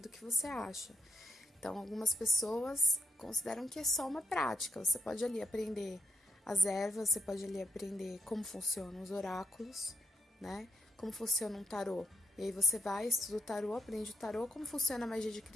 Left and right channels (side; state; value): both; normal; correlation 0.79